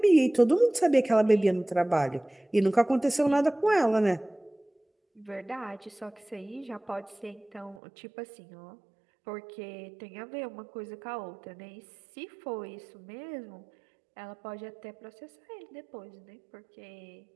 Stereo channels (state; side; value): drops out; left; at 7.8 s